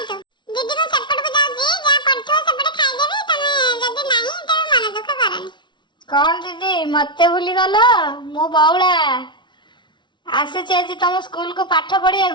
ତୁ। ଦିଦି ମୁଁ ସେପଟକୁ ଯାଉଛି, ଯାହା ପଡିଥିବ ସେପଟେ ଖାଇଦେବି। ତମେ ଯଦି ନାହିଁ ତେବେ ମନ ଦୁଃଖ କରନି। କଣ ଦିଦି ମତେ ଭୁଲିଗଲ? ମୁଁ ବଉଳା ଆସିଛି ଆଜି ତମ ସ୍କୁଲକୁ ପାଠ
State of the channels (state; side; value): late; right; 0.23 ms